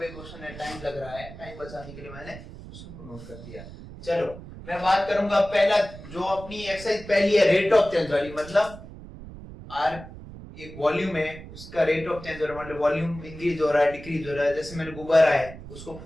क्वेश्चन है, टाइम लग रहा है, टाइम बचाने के लिए मैंने क्वेश्चन को नोट कर दिया। चलो मैं बात करूंगा पहला, जो अपनी एक्सरसाइज पहली है रेट ऑफ चेंज वाली, मतलब आर एक वॉल्यूम है, उसका रेट ऑफ चेंज हो रहा है, मतलब वॉल्यूम इंक्रीज हो रहा है डिक्रीज हो रहा है। जैसे मैंने गुब्बारा है उसको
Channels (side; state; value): right; noise; rumble, 15 dB below the sound